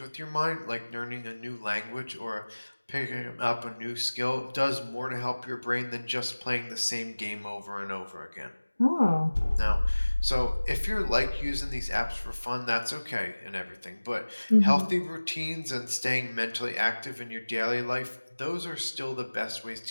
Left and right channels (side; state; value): both; inverted; correlation -1.00